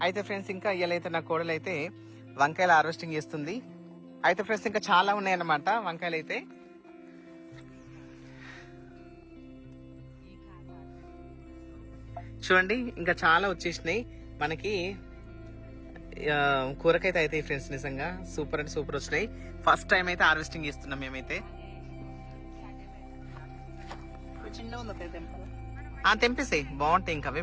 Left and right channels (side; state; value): both; identical; correlation 1.00